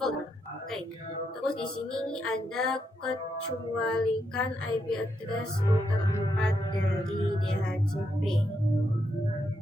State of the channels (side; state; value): both; normal; correlation 0.80